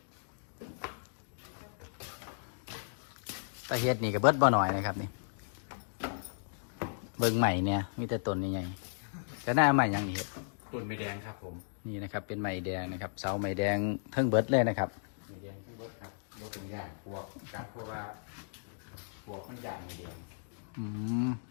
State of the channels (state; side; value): silent; right; digital silence